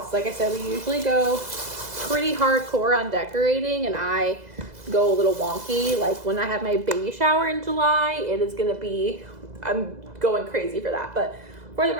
Like I said, we usually go pretty hardcore on decorating, and I go a little wonky. Like when I have my baby shower in July, it is gonna be, I'm going crazy for that. But for the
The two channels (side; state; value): left; late; 2.0 ms